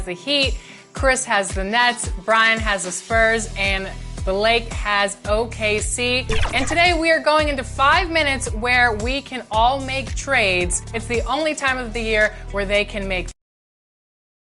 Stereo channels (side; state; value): both; identical; correlation 1.00